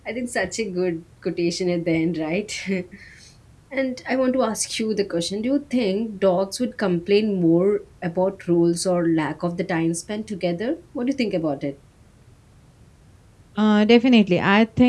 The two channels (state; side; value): identical; both; correlation 1.00